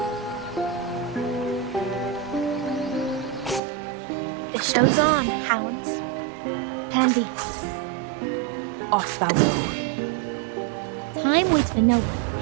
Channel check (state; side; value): drops out; left; at 3.6 s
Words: The show's on, hounds. Plan B. Off thou go. Time waits for no